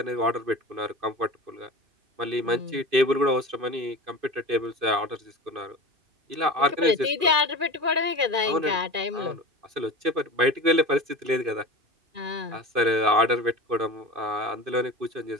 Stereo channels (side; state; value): left; late; 2.4 ms